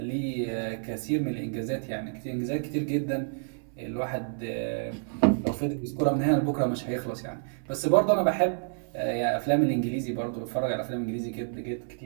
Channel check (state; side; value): silent; left; 59 dB below the other